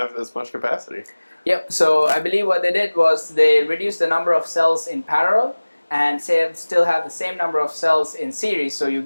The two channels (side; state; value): both; inverted; correlation -1.00